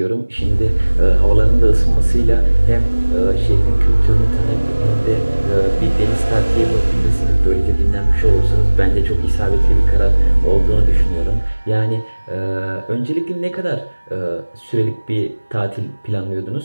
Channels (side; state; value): both; inverted; correlation -1.00